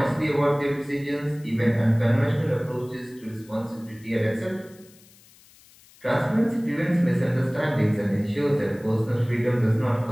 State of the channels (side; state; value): left; noise; hiss, 26 dB below the sound